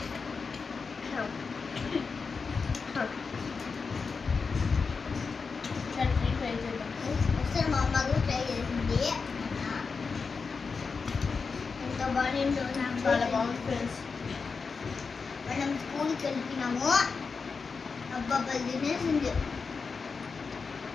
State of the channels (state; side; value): quieter; right; 4.9 dB